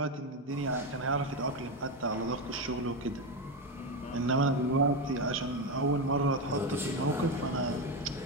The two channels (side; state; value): both; normal; correlation 0.13